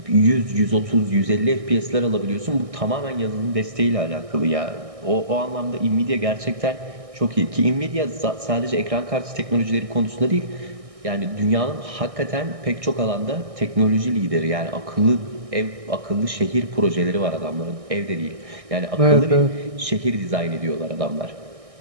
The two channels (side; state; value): left; late; 1.6 ms